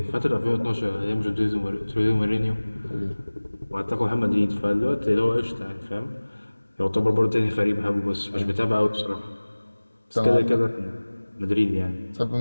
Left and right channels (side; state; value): both; inverted; correlation -1.00